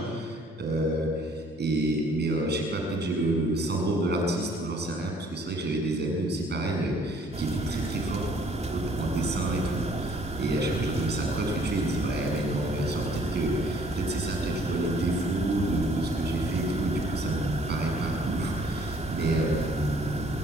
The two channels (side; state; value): both; normal; correlation 0.60